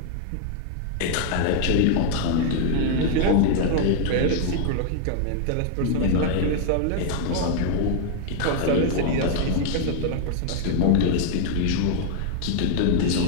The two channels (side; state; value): both; different; correlation 0.00